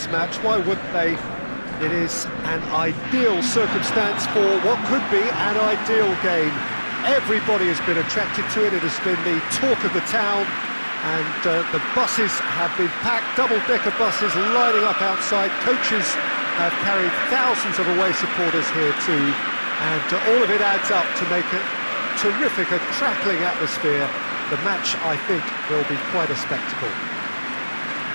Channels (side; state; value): both; inverted; correlation -1.00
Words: match. Why wouldn't they? It is an ideal circumstance for what could be an ideal game. Everybody has been attracted to it. It has been the talk of the town, and the buses have been packed, double-decker buses lining up outside. Coaches have carried thousands of away supporters here too. And all of it adds up to make a terrific, a crackling atmosphere. The match, I think, will be quite a spectacle.